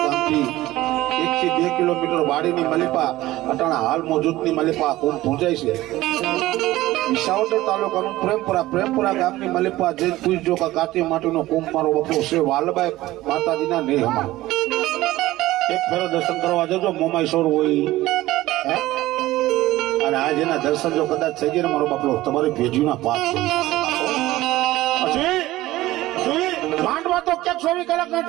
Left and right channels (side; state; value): left; quieter; 16.8 dB